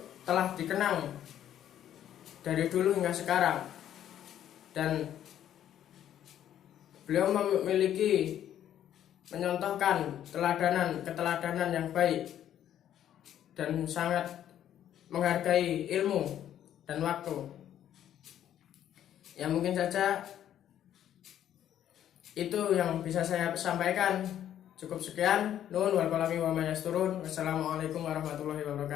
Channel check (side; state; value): right; quieter; 10.9 dB